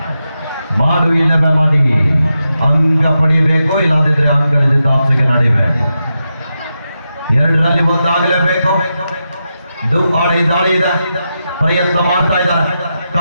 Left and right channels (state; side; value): inverted; both; correlation -0.88